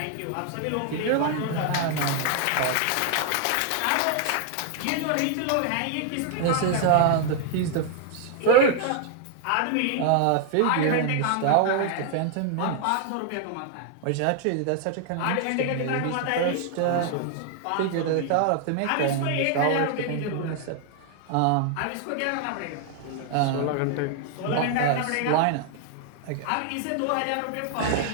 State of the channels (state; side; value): different; both; correlation 0.00